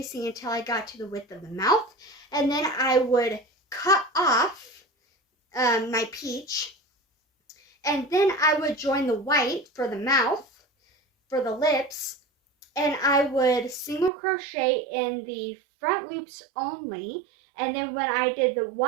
until I got to the width of the mouth, and then I would cut off my peach, and then I would join the white for the mouth, for the lips, and I would single crochet in the front loops only, and then when I did the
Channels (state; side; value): drops out; left; at 14.1 s